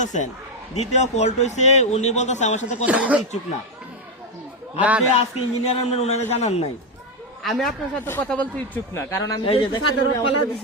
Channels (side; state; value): both; normal; correlation 0.06